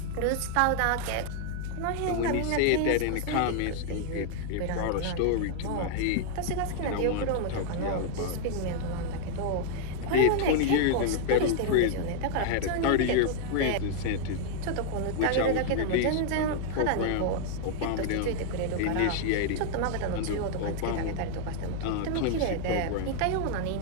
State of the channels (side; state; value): both; different; correlation 0.00